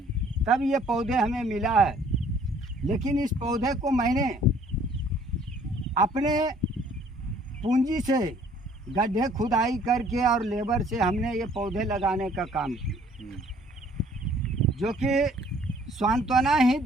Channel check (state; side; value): normal; both; correlation 0.58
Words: तब ये पौधे हमें मिला है। लेकिन इस पौधे को मैंने अपने पूंजी से गड्ढे खुदाई करके और लेबर से हमने ये पौधे लगाने का काम किया, जो कि सांत्वना ही